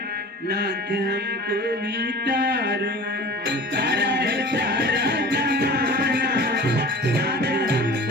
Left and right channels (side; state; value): both; normal; correlation 0.40